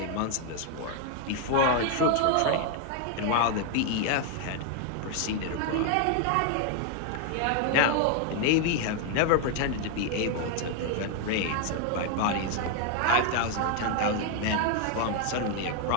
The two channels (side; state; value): both; different; correlation 0.00